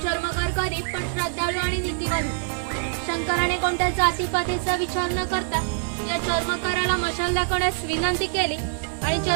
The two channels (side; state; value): left; silent; digital silence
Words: चर्मकार गरीब पण श्रद्धाळू आणि नीतिवान होते। शंकराने कोणत्या जातीपातीचा विचार न करता या चर्मकाराला मशाल दाखवण्यास विनंती केली आणि